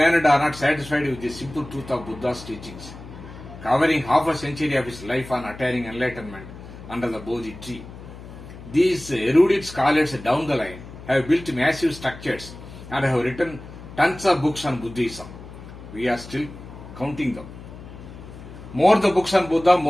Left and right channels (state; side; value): noise; left; hum, 15 dB below the sound